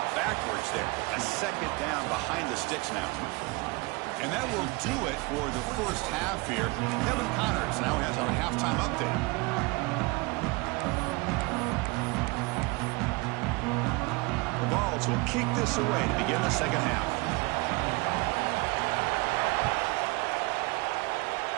backwards there. A 2nd down behind the sticks now. And that will do it for the first half here. Kevin Connors now has our halftime update. The Vols will kick this away to begin the second half.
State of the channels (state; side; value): quieter; left; 25.9 dB